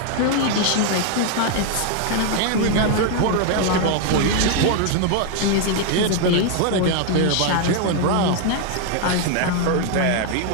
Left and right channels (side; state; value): both; different; correlation 0.01